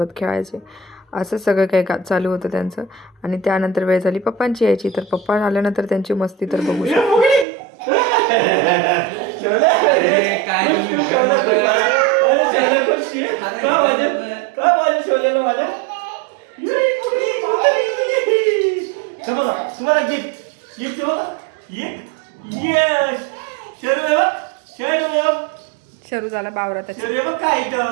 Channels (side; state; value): left; drops out; at 7.5 s